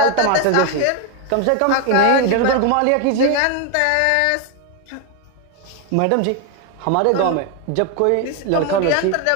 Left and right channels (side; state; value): both; different; correlation 0.01